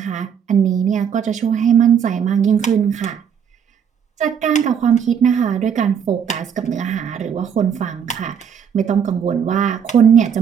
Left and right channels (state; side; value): quieter; left; 7.7 dB